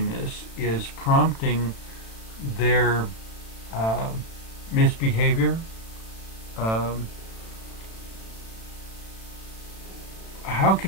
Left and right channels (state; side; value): late; right; 36 ms